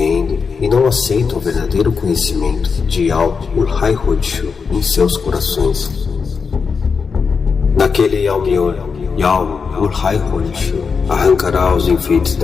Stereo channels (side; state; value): right; quieter; 5.5 dB